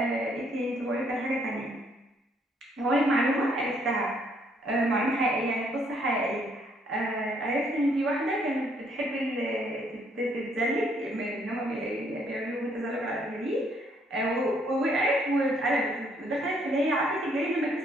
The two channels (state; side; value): normal; both; correlation 0.68